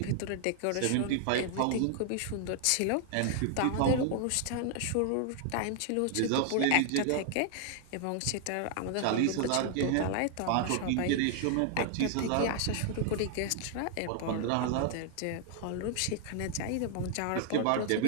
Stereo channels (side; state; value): both; different; correlation 0.00